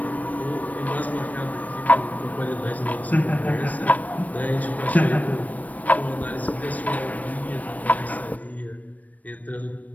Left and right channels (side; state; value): right; late; 0.072 ms